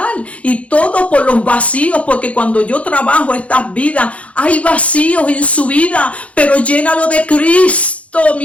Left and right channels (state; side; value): late; right; 0.064 ms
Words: y todo por los vacíos, porque cuando yo trabajo estas vidas, hay vacíos en su vida, pero llénalo de Cristo,